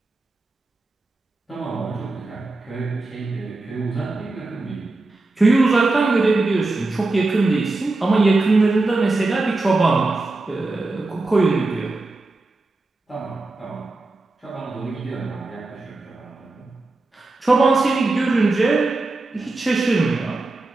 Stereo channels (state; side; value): quieter; left; 3.2 dB